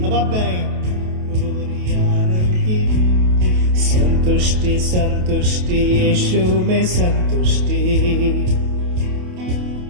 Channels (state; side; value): late; left; 28 ms